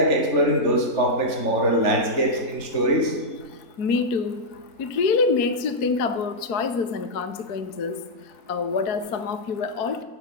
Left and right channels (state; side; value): late; right; 4.6 ms